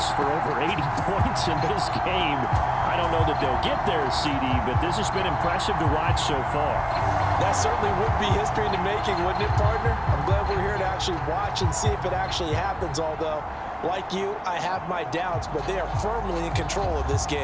for over 80 points in this game. I don't know that they'll get there, CD, but this has been impressive to watch so far. That certainly would be history in the making, wouldn't it, partner? I'm glad we're here to actually watch and see if it actually happens, although, like you, I have my doubts, but they are firmly in control of this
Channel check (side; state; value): both; identical; correlation 1.00